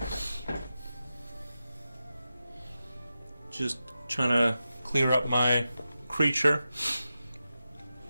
Just trying to clear up my creature.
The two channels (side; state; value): both; inverted; correlation -0.91